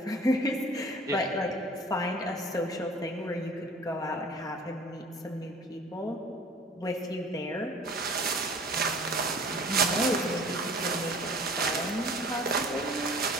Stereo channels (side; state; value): both; normal; correlation 0.46